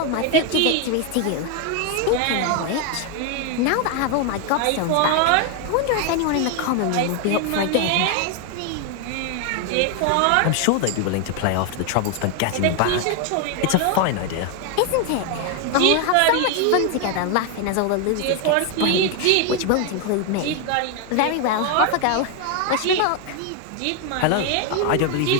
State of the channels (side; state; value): both; different; correlation 0.01